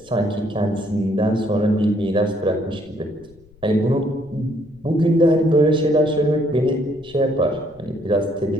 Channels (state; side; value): noise; left; rumble, 27 dB below the sound